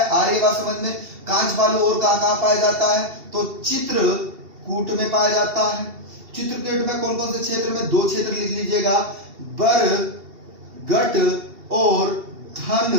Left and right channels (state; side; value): late; left; 2.7 ms